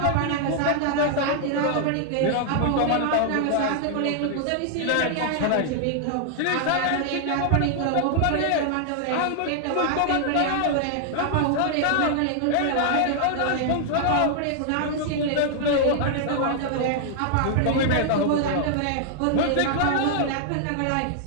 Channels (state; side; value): different; both; correlation -0.01